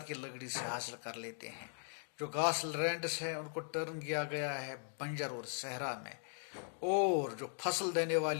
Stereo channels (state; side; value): silent; right; 52 dB below the other